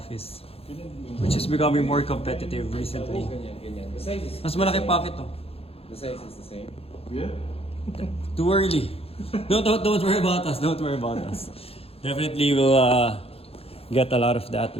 which is becoming more competitive recently. Mas malaki pocket to. The size is the same. Yeah? Too early. Don't worry about us. Don't worry about us. Definitely we'll get a lot of that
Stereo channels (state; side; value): late; right; 0.28 ms